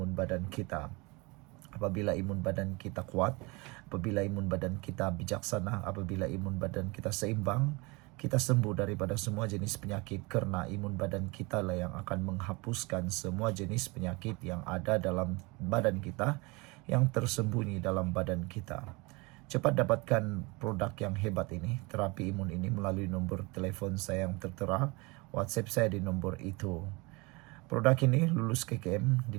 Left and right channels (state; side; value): quieter; left; 26.2 dB